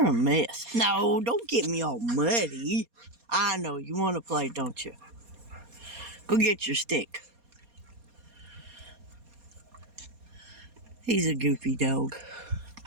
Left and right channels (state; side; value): late; left; 4.2 ms